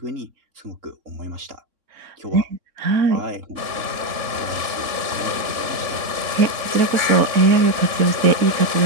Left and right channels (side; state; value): left; late; 3.6 ms